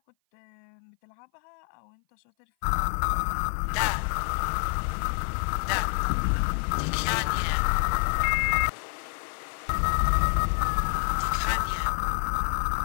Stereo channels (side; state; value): right; silent; 57 dB below the other